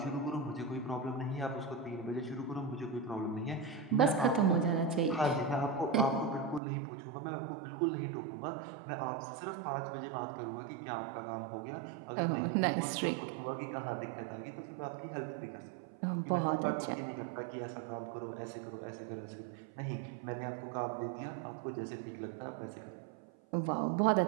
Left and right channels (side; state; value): left; drops out; at 6.6 s